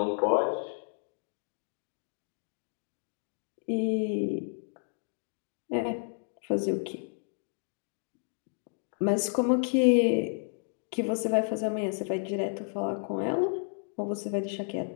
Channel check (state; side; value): silent; right; digital silence